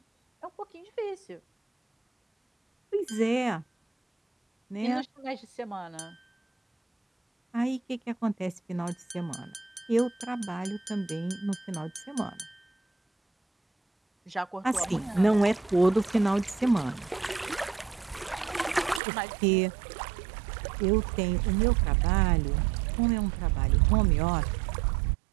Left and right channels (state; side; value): drops out; left; at 19.0 s